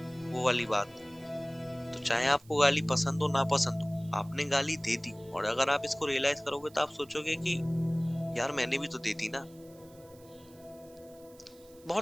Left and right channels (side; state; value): right; noise; hiss, 26 dB below the sound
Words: वो वाली बात। तो चाहे आपको गाली पसंद हो ना पसंद हो, आपने गाली दे दी, और अगर आप इसको रियलाइज करोगे तो आप सोचोगे कि यार मैंने भी तो दे दी ना।